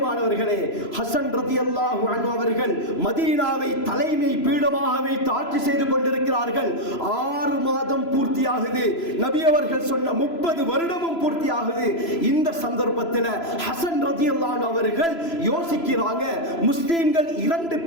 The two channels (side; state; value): right; late; 3.0 ms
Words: ஹசன் ரலியல்லாஹு அன்ஹு அவர்கள் மதீனாவை தலைமை பீடமாக வைத்து ஆட்சி செய்து கொண்டிருக்கிறார்கள். 6 மாதம் பூர்த்தியாகுது. நபி அவர்கள் சொன்ன 30 வருடமும் பூர்த்தியாகுது. இந்த சந்தர்ப்பத்தில் ஹசன் ரலியல்லாஹு அன்ஹு அவர்கள் யோசிக்கிறாங்க, முஸ்லிம்கள் 2